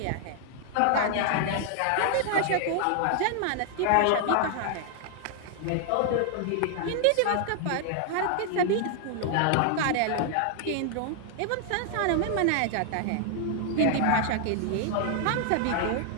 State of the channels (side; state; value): both; different; correlation 0.00